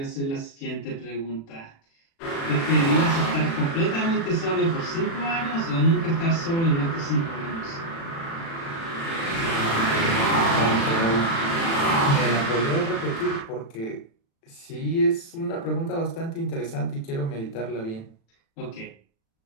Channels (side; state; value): right; late; 36 ms